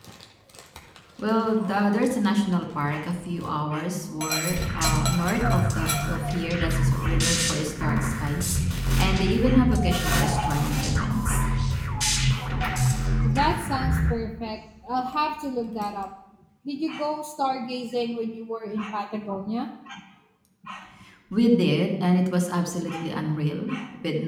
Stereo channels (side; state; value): both; identical; correlation 1.00